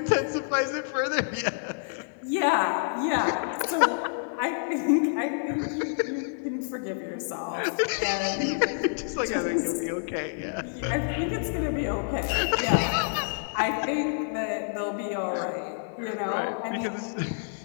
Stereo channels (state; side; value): silent; right; digital silence